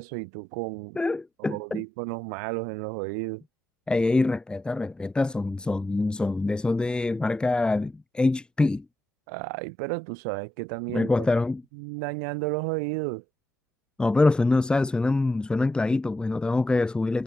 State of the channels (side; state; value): both; normal; correlation 0.86